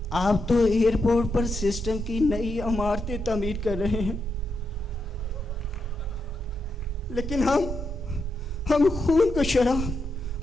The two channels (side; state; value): both; normal; correlation 0.83